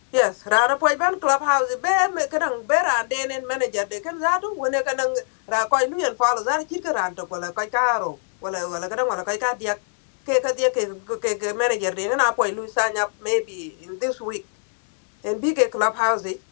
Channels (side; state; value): right; silent; 61 dB below the other